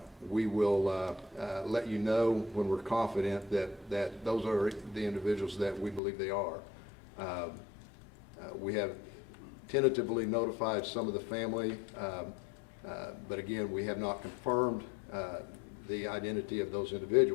We will let you know when we're confident that those are the individuals that we believe they are. We have tentatively notified some of the family, but again, we have not confirmed the identity of those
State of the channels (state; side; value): drops out; right; at 6.0 s